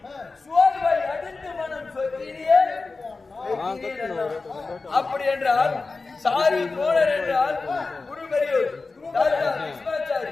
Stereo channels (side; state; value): right; quieter; 3.9 dB